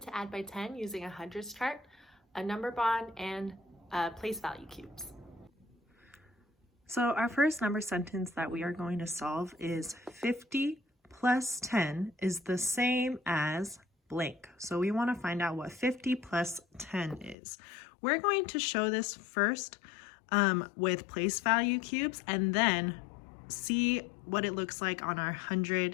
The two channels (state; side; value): drops out; right; at 17.4 s